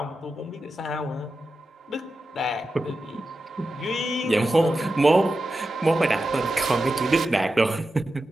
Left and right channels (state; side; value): normal; both; correlation 0.91